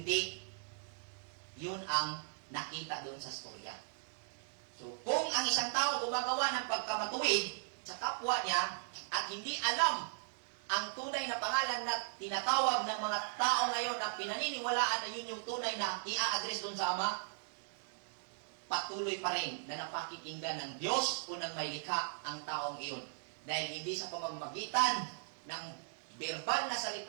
yun ang nakita doon sa storya. So, kung ang isang tao gumagawa ng pagkamatuwid sa kapwa niya at hindi alam ang tunay na pangalan na tinatawag ng mga tao ngayon na pinaniniwalaan na yun yung tunay na i-address doon sa Ama, patuloy pa rin na napakikinggan ng Diyos o ng may likha ang taong iyon. Dahil hindi sa pamamagitan ng verbal na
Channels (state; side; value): silent; left; digital silence